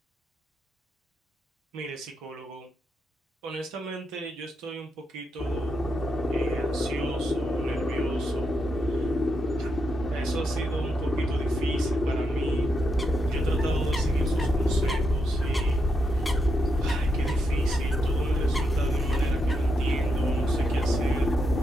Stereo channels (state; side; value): normal; both; correlation 0.82